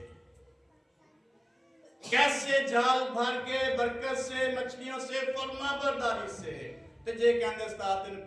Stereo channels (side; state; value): both; identical; correlation 1.00